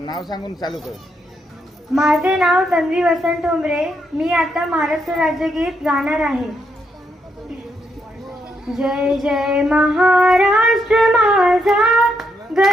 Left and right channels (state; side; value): normal; both; correlation 0.78